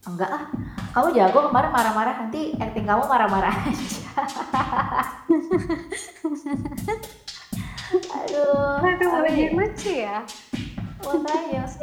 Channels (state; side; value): identical; both; correlation 1.00